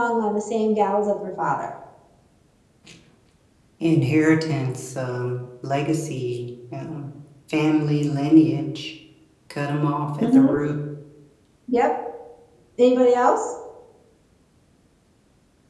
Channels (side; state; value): both; identical; correlation 1.00